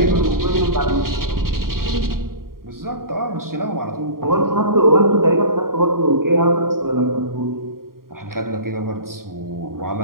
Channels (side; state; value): left; late; 0.92 ms